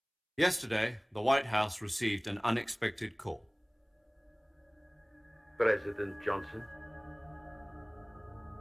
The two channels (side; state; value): both; identical; correlation 1.00